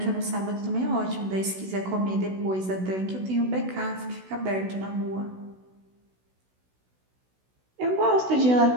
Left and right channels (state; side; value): late; left; 16 ms